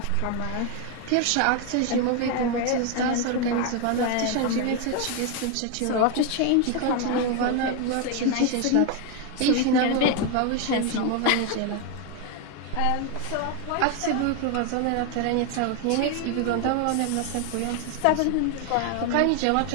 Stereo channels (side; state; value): both; different; correlation 0.01